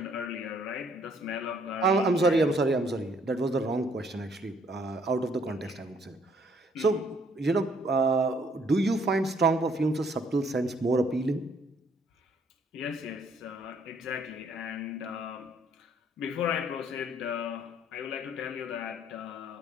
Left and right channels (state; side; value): normal; both; correlation 0.65